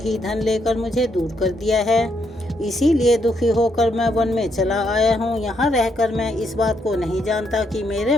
धन लेकर मुझे दूर कर दिया है। इसीलिए दुखी होकर मैं वन में चला आया हूँ। यहाँ रहकर मैं इस बात को नहीं जानता कि मेरे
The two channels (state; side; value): normal; both; correlation 0.76